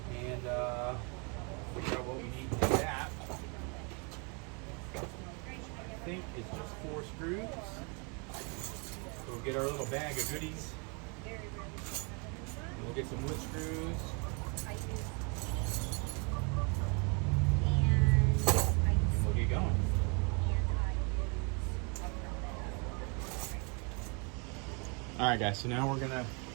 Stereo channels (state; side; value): quieter; left; 34.1 dB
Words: and figure out what we need to do that. I think it's just 4 screws. We'll get our little bag of goodies. And we'll get some wood screws. And we'll get going. All right, guys, so now we're gonna